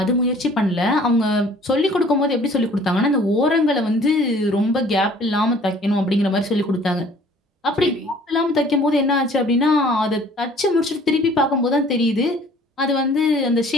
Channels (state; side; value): normal; both; correlation 0.53